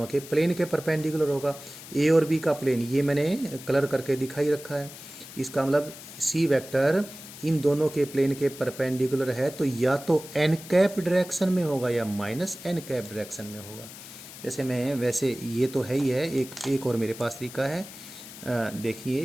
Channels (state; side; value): noise; left; hiss, 15 dB below the sound